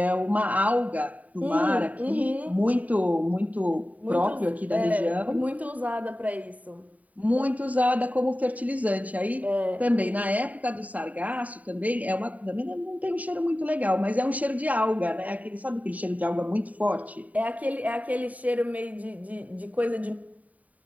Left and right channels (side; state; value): left; late; 0.071 ms